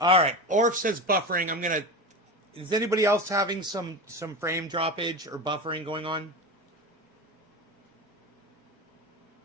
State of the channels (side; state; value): both; normal; correlation 0.25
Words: right. Orf says buffering. Is anybody else having some frame droppage or buffering going on?